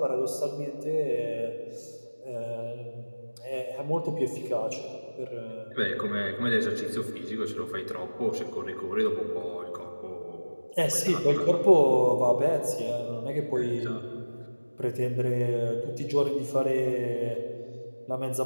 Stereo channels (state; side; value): inverted; both; correlation -1.00